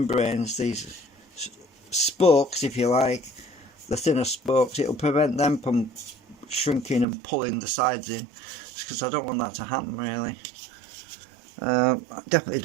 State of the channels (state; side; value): drops out; left; at 7.1 s